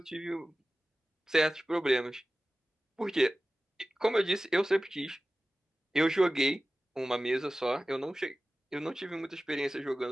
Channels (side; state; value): both; normal; correlation 0.96